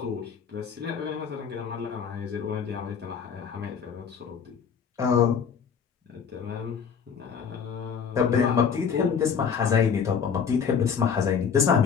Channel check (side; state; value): right; quieter; 6.8 dB